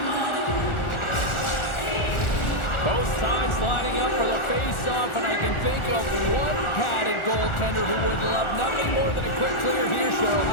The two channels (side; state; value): right; late; 1.4 ms